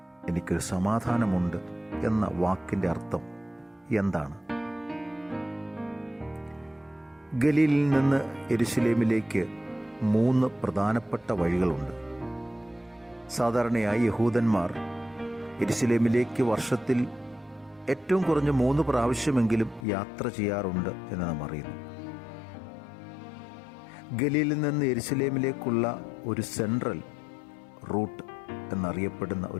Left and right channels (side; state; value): right; drops out; at 19.9 s